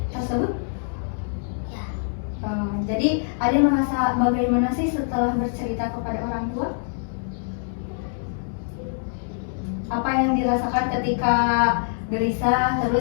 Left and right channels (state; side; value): silent; right; digital silence